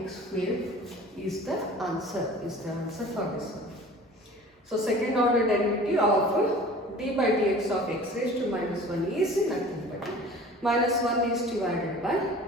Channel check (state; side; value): normal; both; correlation 0.44